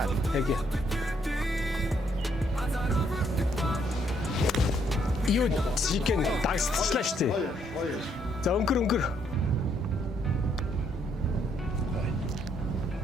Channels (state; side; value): normal; both; correlation 0.71